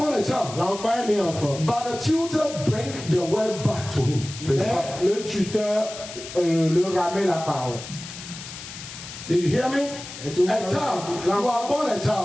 a child, l'enfant est né enfant. but the tutor bring the word back to him. To his father. Mais le tuteur le ramène la parole. Did you hear me? Est-ce que vous A avez- child, you are born a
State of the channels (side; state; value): left; noise; hiss, 12 dB below the sound